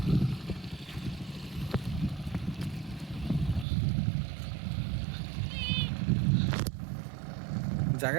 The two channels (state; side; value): drops out; left; at 3.7 s